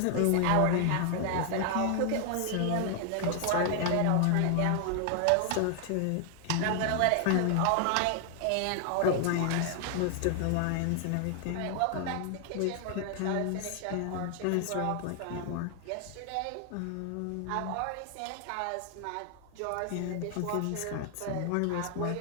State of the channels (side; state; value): both; different; correlation 0.00